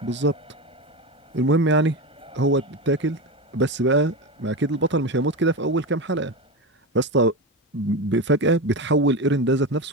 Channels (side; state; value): both; normal; correlation 0.19